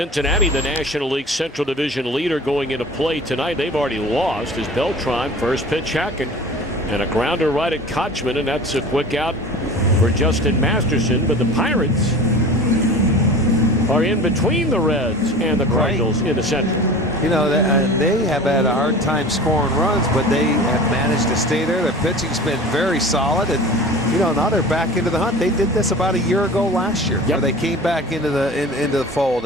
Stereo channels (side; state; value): both; normal; correlation 0.39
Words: the National League Central Division leader, going into play tonight. They've already lost as Beltran first pitch hacking and a grounder right at Kochman, and that's a quick out for Justin Masterson. But the Pirates are in between the Reds and the Cardinals in the Central. You know, they have had a hard time scoring runs, but they have managed to stay there. Their pitching's been very solid, and you know, now they're back into the hunt. They did this about a year ago last year, where they came back into the fold,